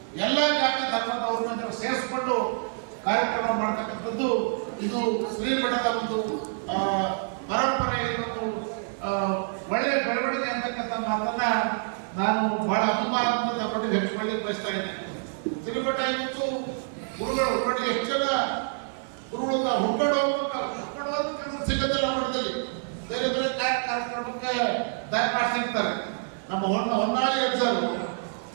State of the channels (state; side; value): silent; left; digital silence